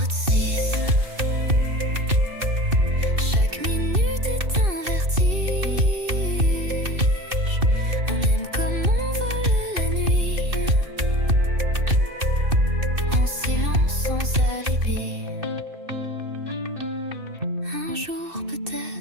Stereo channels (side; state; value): left; late; 2.6 ms